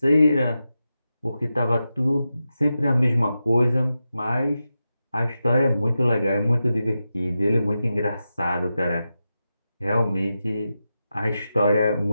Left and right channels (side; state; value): both; inverted; correlation -0.90